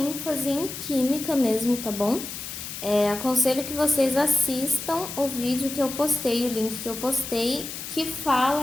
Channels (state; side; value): noise; left; hiss, 8 dB below the sound